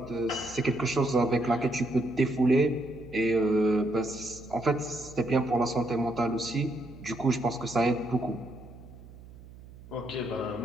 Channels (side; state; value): right; noise; hum, 19 dB below the sound